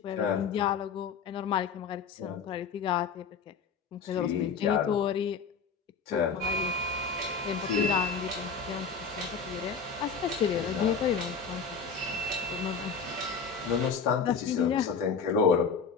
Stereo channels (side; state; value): right; quieter; 5.7 dB